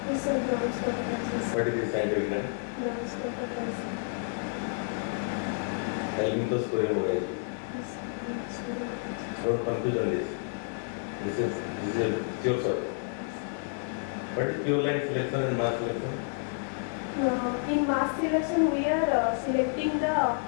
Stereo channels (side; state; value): right; silent; 58 dB below the other